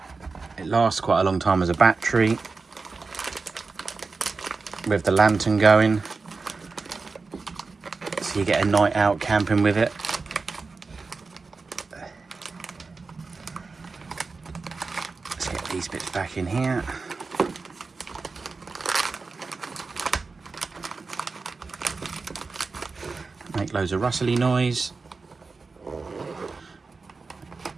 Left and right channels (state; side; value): quieter; left; 4.2 dB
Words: It lasts quite a long time as a battery with the lantern going, so you get a night out camping with it. Let's get these bits back in here. Make loads of rustly noise,